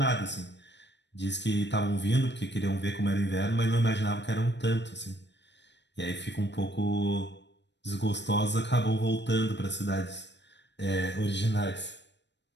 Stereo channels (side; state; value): right; late; 0.51 ms